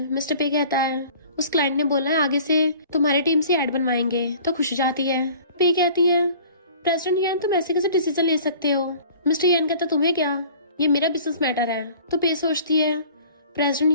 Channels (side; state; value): both; inverted; correlation -0.48